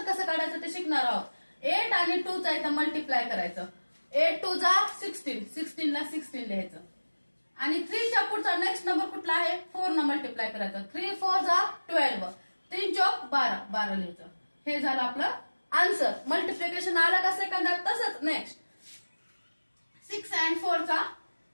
कसं काढायचं ते शिकणार आहोत. 8 आणि 2 चा इथं मल्टिप्लाय करायचं. 8 2 जा 16, 16 ला 16 लिहायचं. आणि 3 च्या पुढचा नेक्स्ट नंबर कुठला आहे, 4 न मल्टिप्लाय करायचं. 3 4 जा 12, 3 चौक 12, 12 लिहायचं. हे झालं आपलं आन्सर. मल्टिप्लिकेशन आलं का सेकंदात. तसंच नेक्स्ट 6 अँड 4 चा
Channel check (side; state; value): both; inverted; correlation -1.00